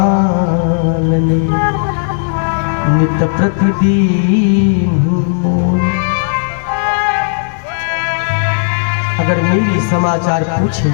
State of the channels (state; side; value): silent; right; digital silence